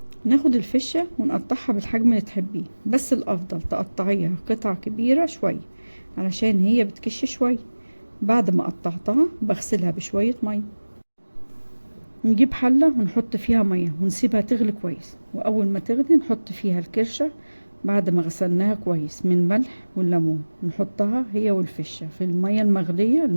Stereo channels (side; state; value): both; inverted; correlation -1.00